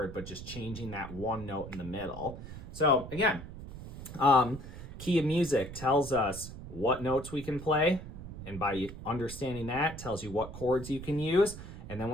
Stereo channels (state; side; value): noise; right; rumble, 11 dB below the sound